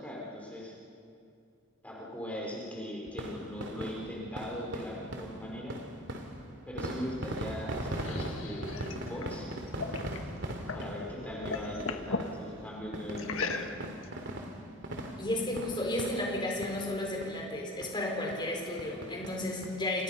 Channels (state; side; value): normal; both; correlation 0.38